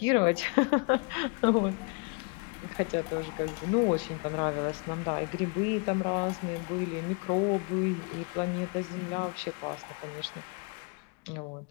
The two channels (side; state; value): right; quieter; 33.1 dB